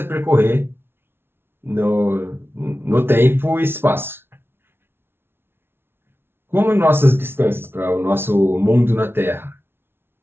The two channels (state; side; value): late; left; 0.11 ms